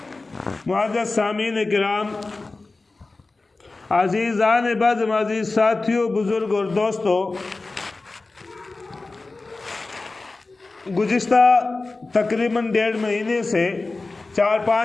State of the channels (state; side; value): quieter; right; 3.4 dB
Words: معزز سامعین کرام، عزیزان بزم، عزیز ساتھیوں، بزرگ اور دوستوں، گزشتہ تقریباً 1.5 مہینے سے